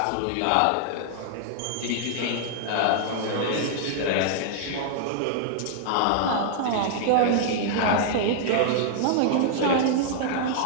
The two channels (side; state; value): both; different; correlation -0.01